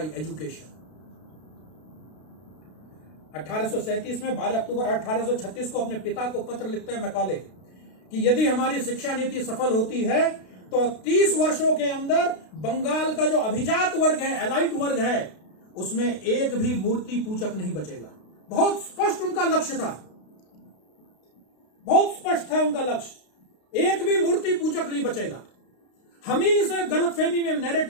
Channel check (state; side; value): late; right; 32 ms